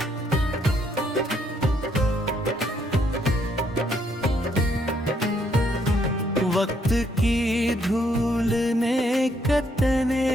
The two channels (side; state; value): both; normal; correlation 0.71